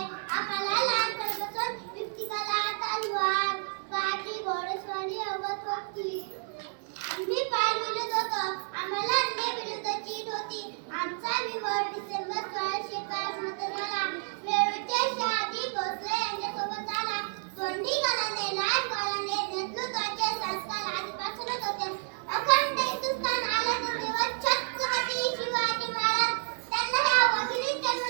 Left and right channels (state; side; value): silent; left; 58 dB below the other